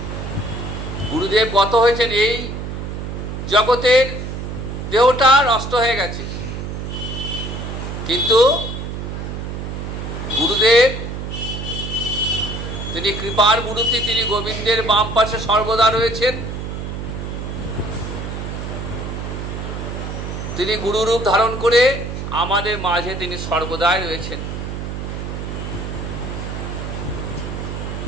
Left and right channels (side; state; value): right; noise; hum, 6 dB below the sound